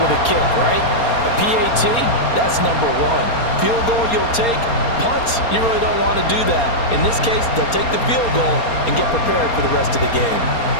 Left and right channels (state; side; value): late; right; 4.3 ms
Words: a kick, right? A PAT, that's number 1. Field goal you'll take. Punts, you really don't want to do that. In this case, they'll take the field goal and get prepared for the rest of the game.